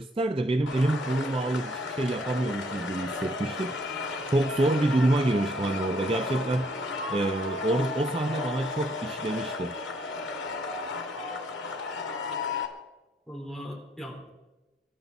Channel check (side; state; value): both; normal; correlation 0.67